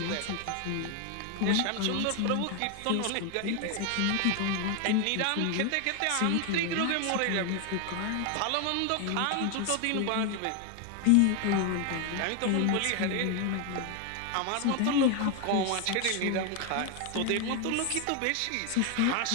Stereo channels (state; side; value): different; both; correlation 0.01